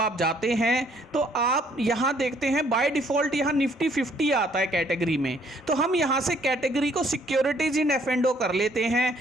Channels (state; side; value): normal; both; correlation 0.64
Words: जाते हैं तो आप यहाँ देखते हैं बाय डिफ़ॉल्ट यहाँ निफ्टी 50 आता है कैटेगरी में, तो हम यहाँ से कैटेगरी को सिक्योरिटीज इन एफ एंड ओ कर लेते हैं।